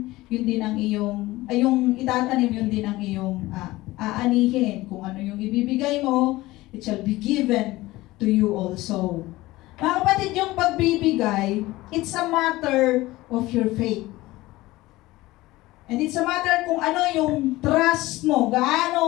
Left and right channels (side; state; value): right; quieter; 18.7 dB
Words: yun din ang iyong, ay yung itatanim, yun din ang iyong aanihin. Kung ano yung ibibigay mo, it shall be given to you also. Mga kapatid, yung pagbibigay, it's a matter of your faith. And it's a matter kung ano yung trust mo,